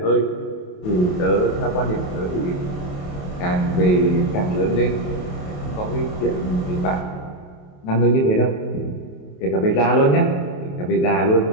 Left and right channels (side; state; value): right; late; 28 ms